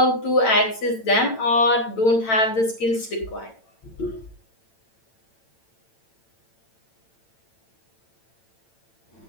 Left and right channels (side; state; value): right; late; 8.9 ms